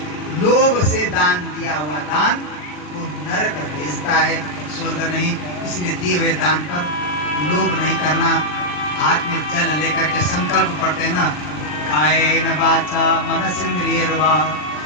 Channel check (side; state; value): right; late; 40 ms